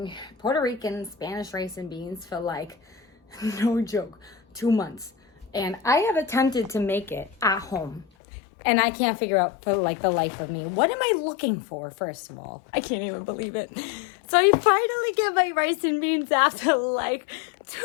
Puerto Rican Spanish rice and beans for like, no joke, 2 months. And I have attempted to make it at home. And I can't figure out for like the life of me. What am I looking for, first of all? I can't even believe it. So I finally get my rice and beans after like 2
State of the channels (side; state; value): right; drops out; at 8.1 s